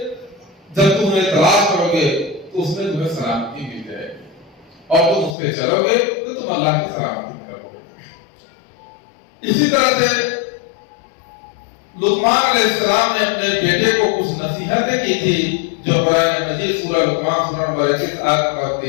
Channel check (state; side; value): drops out; right; at 5.4 s